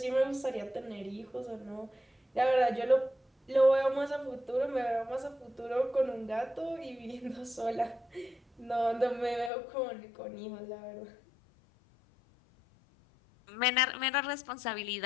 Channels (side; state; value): right; drops out; at 9.5 s